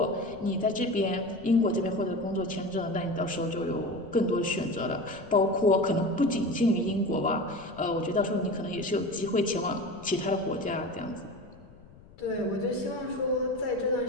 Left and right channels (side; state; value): left; noise; rumble, 22 dB below the sound